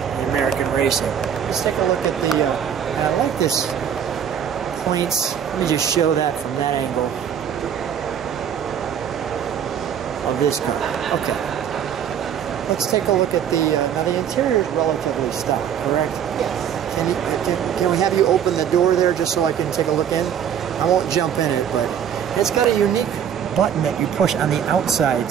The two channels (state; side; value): quieter; left; 8.6 dB